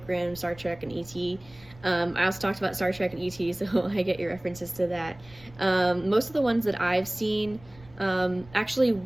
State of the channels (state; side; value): noise; right; rumble, 23 dB below the sound